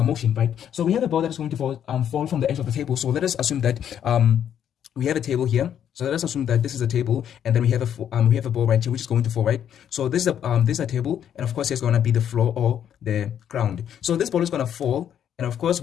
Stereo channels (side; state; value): right; quieter; 9.5 dB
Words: motion, right? So we have a ball that is going to fall from the edge of the table. So let us assume that we have a table here. So let us assume that this is a table, and then we have a ball right here which is going to fall, right? So this is a table, and of course it's going to be the floor or the ground. So this ball is going to fall, and of course